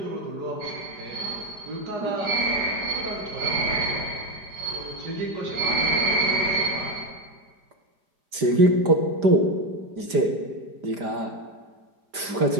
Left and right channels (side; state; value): left; late; 5.0 ms